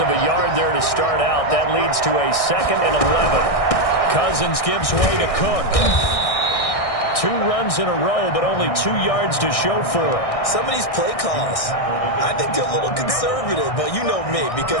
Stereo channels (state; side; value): late; right; 1.6 ms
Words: a yard there to start out. That leads to a 2nd and 11. Cousins gives way to Cook. 2 runs in a row, but only 2 yards to show for it. Some of these play calls, I think they're a little conservative, but you know me,